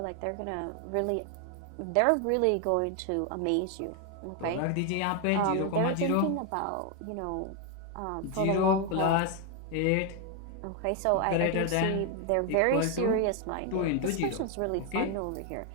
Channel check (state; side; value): different; both; correlation 0.01